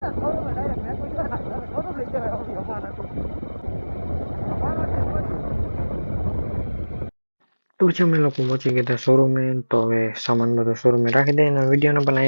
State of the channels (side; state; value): both; inverted; correlation -1.00